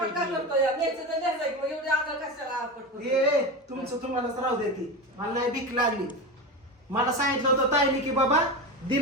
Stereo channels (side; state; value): both; normal; correlation 0.22